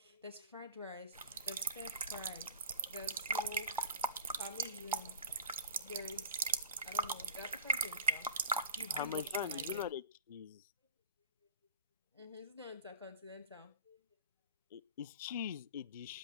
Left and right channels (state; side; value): inverted; both; correlation -0.38